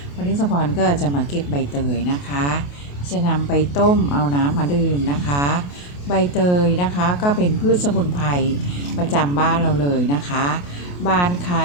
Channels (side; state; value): right; late; 28 ms